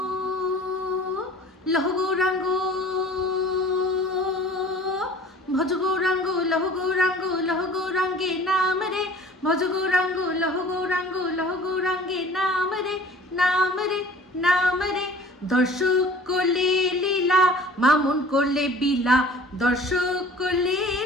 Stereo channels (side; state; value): both; normal; correlation 0.47